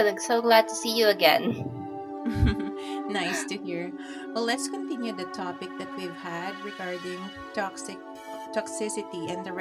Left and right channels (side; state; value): both; identical; correlation 1.00